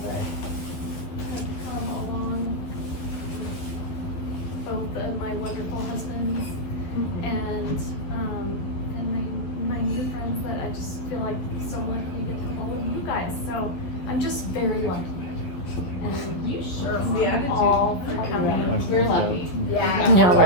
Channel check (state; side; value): late; right; 11 ms